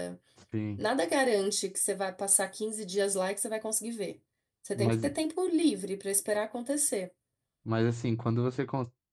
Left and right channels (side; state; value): both; identical; correlation 1.00